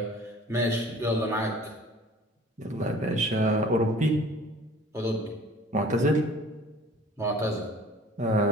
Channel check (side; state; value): both; normal; correlation 0.48